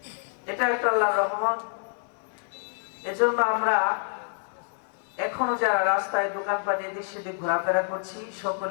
এটা একটা আল্লাহর রহমত। এজন্য আমরা এখনো যারা রাস্তায় দোকানপাটে এদিক সেদিক ঘোরাফেরা করছি,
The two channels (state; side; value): silent; right; digital silence